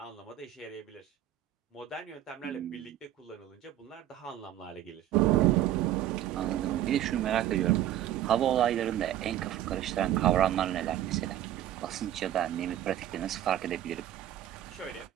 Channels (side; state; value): left; quieter; 12.4 dB